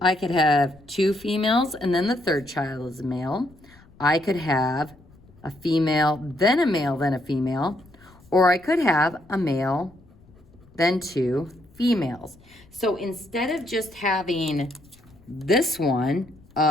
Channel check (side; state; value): left; noise; rumble, 26 dB below the sound